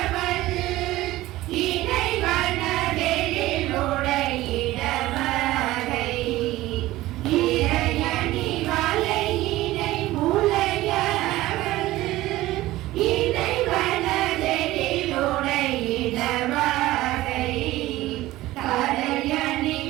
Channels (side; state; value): left; quieter; 17.0 dB